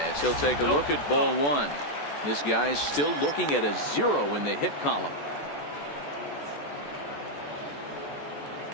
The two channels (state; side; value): late; right; 14 ms